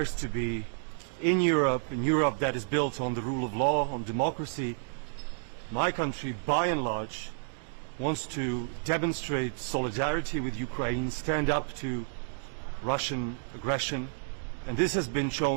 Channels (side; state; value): left; silent; digital silence